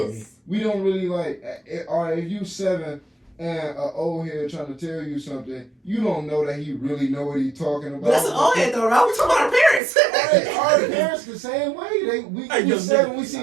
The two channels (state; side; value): drops out; left; at 9.8 s